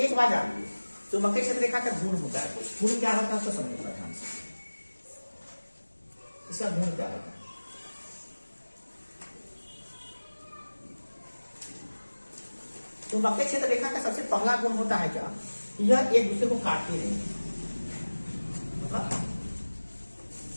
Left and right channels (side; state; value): both; inverted; correlation -1.00